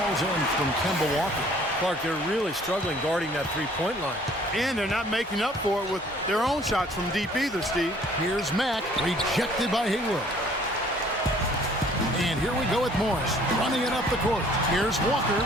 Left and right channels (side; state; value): both; normal; correlation 0.56